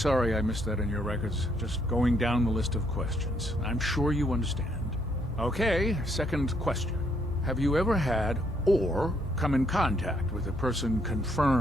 I missed that in your records. Just going down the list of questions. I'm sure you understand. Okay, second question. Have you ever had or come in contact with a person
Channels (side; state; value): both; normal; correlation 0.71